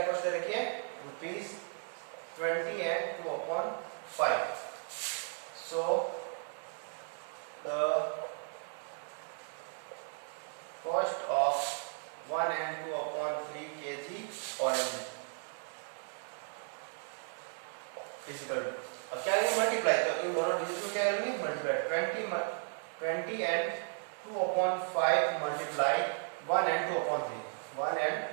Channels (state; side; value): silent; left; 54 dB below the other